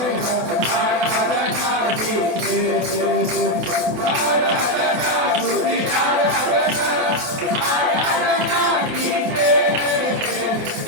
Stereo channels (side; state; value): left; late; 28 ms